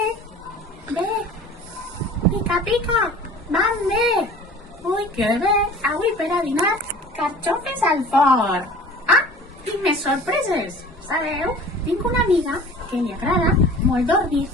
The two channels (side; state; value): both; normal; correlation 0.43